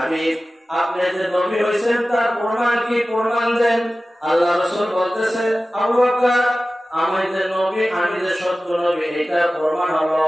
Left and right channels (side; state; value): both; normal; correlation 0.96